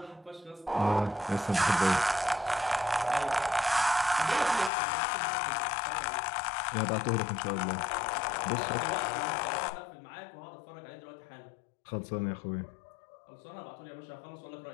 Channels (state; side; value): drops out; right; at 4.7 s